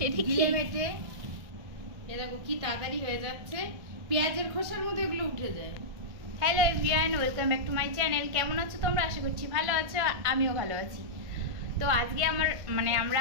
গিলে মেটে। এ দেখো কি তাড়াতাড়ি হয়ে যাচ্ছে, পেঁয়াজের খোসার মতো এগুলো উঠে যায়। Hello everyone, welcome back to my channel. কেমন আছো তোমরা? আশা করছি ভালো আছো, আমিও ভালো আছি। তো আজকে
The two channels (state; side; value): late; left; 1.5 ms